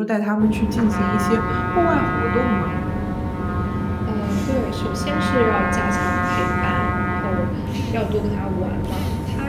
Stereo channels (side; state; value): both; identical; correlation 1.00